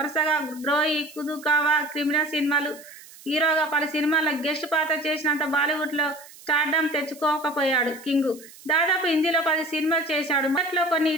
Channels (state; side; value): noise; right; hiss, 21 dB below the sound